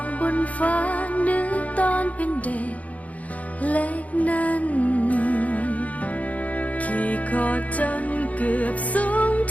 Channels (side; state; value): right; late; 0.070 ms